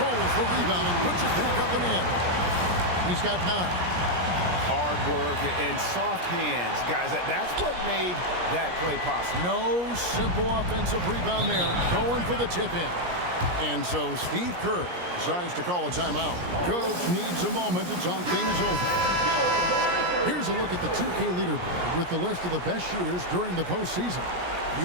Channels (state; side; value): late; left; 17 ms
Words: the rebound and puts it back up and in. He's got 9. Hard work and soft hands, guys. That's what made that play possible. No simple offensive rebound there. Going for the tip-in. And so Steve Kerr decides to call a timeout. Coach needs a moment to talk things over. Here's a look at the 2K leaderboard with the list of the best shooters during the postseason.